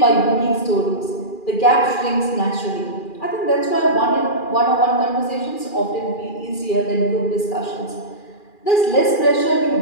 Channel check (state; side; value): late; right; 2.4 ms